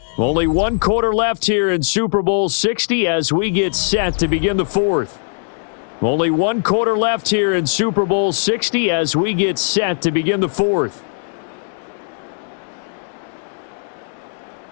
Only 1 quarter left here in Super Bowl 60 as we get set to begin the fourth. Only 1 quarter left here in Super Bowl 60 as we get set to begin the fourth.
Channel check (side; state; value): right; silent; 67 dB below the other